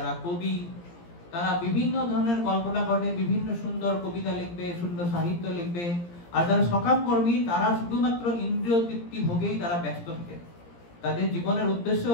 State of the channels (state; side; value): late; right; 17 ms